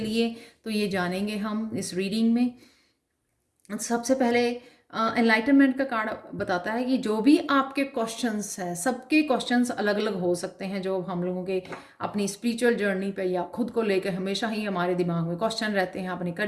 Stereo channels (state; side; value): identical; both; correlation 1.00